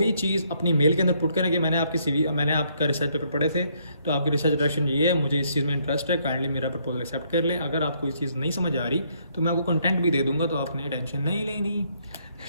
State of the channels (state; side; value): inverted; both; correlation -0.70